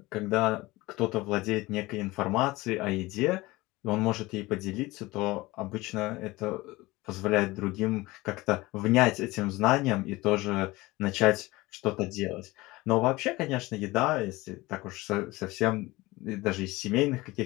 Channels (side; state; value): right; quieter; 20.4 dB